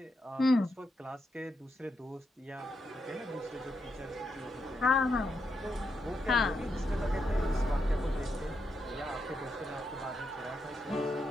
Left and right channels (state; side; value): normal; both; correlation 0.82